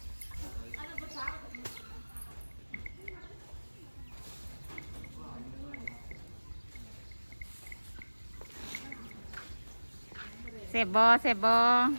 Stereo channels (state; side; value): inverted; both; correlation -1.00